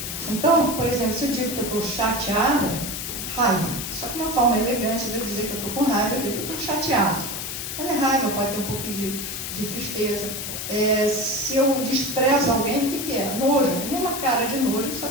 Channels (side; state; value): left; noise; hiss, 5 dB below the sound